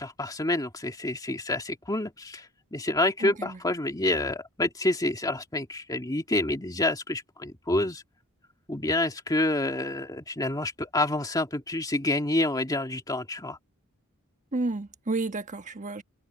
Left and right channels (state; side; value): normal; both; correlation 0.45